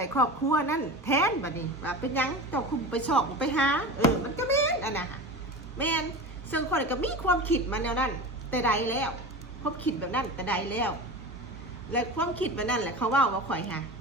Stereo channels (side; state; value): both; normal; correlation 0.30